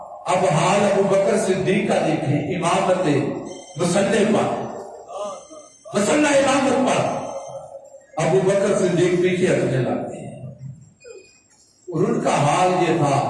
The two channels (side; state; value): both; identical; correlation 1.00